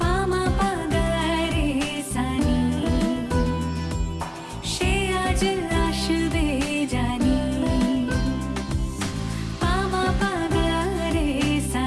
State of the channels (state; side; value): identical; both; correlation 1.00